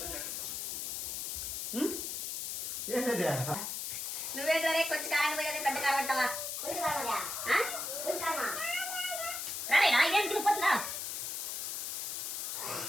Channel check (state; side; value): noise; left; hiss, 3 dB below the sound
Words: నువ్వేంటే కొంచెం కారం పోయేది పెద్ద కారం అంటావా? రాలేనా ఇదేం తిరిగిపోతుందా?